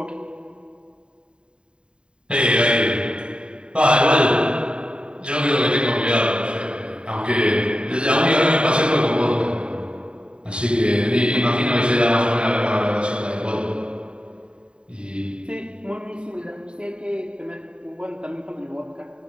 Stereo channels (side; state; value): left; late; 0.051 ms